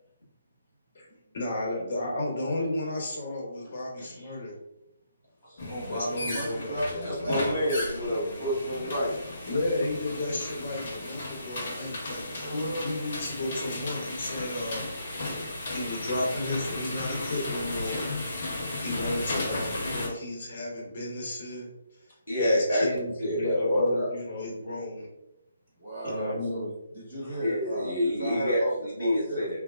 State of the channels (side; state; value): both; inverted; correlation -0.76